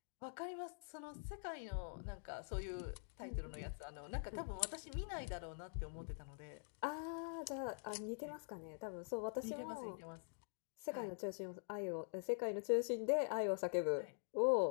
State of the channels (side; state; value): right; silent; digital silence